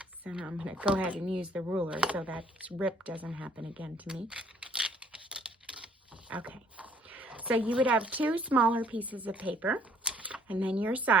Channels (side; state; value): both; normal; correlation 0.62